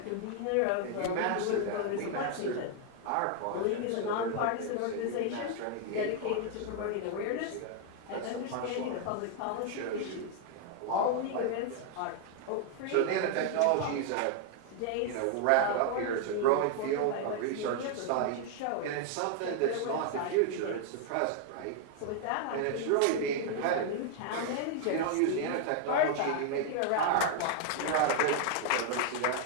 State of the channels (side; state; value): both; different; correlation 0.00